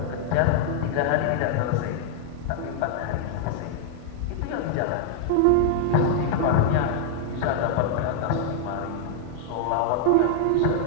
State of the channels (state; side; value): different; both; correlation -0.01